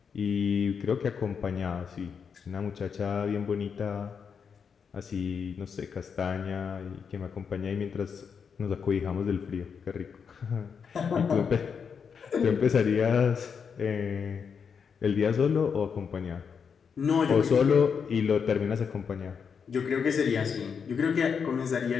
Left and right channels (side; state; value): right; quieter; 6.4 dB